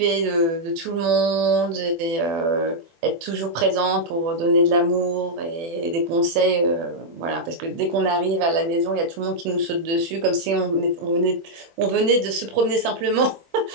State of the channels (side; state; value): left; late; 24 ms